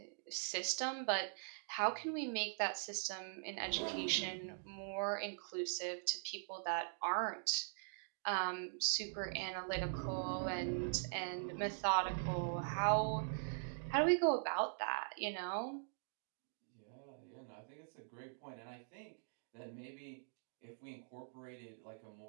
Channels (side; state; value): left; silent; digital silence